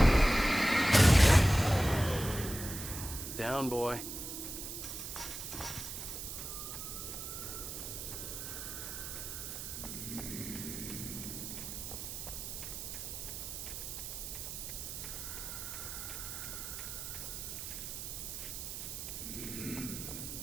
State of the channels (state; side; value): noise; right; hiss, 7 dB below the sound